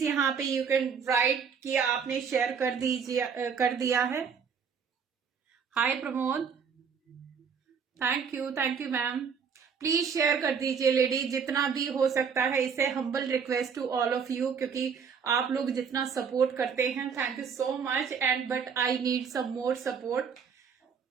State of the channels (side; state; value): left; quieter; 6.5 dB